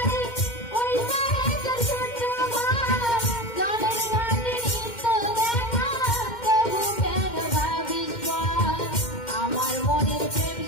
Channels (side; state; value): right; late; 2.1 ms